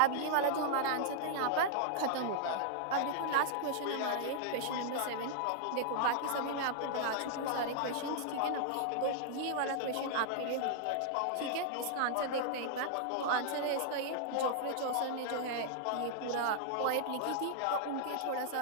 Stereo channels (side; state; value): both; different; correlation -0.01